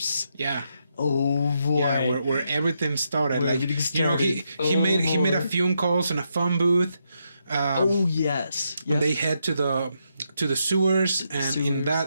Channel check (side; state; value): both; inverted; correlation -0.81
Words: yeah. Oh boy. Yeah, where everything started. Where Like, everything you know, started. he made a boy. phone calls in a phone booth. Oh yes. Yep. They head to the sewers, and